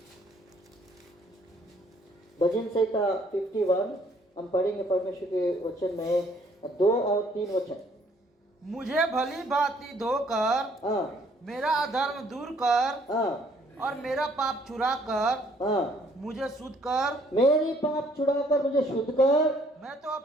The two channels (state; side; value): normal; both; correlation 0.63